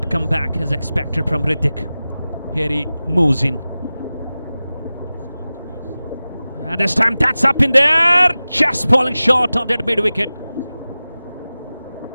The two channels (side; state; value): both; inverted; correlation -0.96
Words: comeback as expected from Hrithik. Here he moves in. And this time that's up in there, just falling short of that mid wicket.